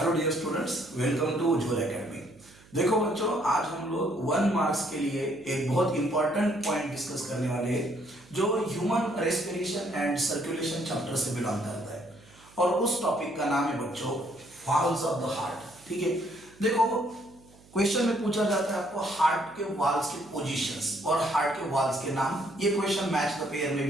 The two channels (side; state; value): right; noise; hum, 26 dB below the sound